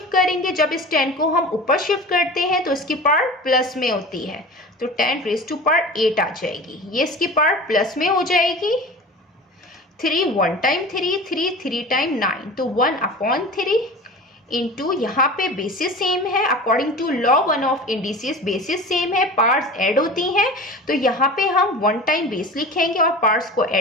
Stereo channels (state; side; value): normal; both; correlation 0.35